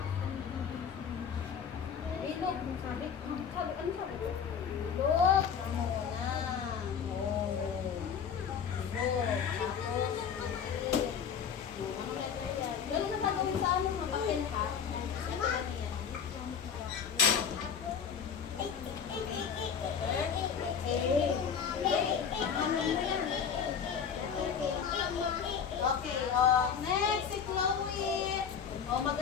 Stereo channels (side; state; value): right; quieter; 7.2 dB